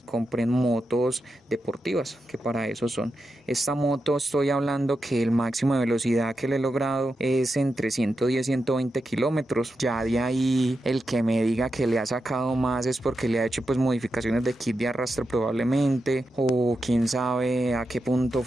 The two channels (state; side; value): normal; both; correlation 0.88